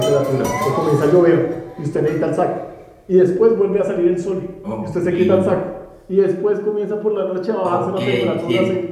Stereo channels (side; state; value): both; identical; correlation 1.00